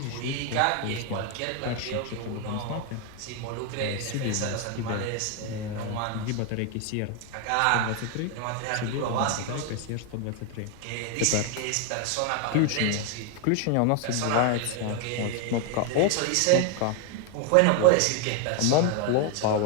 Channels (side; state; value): both; different; correlation 0.01